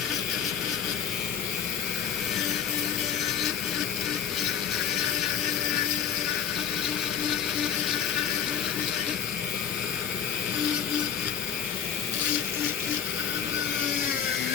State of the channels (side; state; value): right; quieter; 8.4 dB